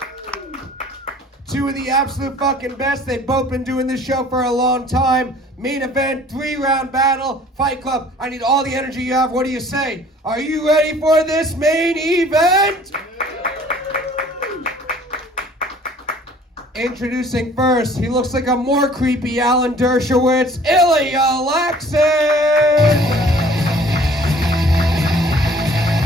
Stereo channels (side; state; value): both; normal; correlation 0.52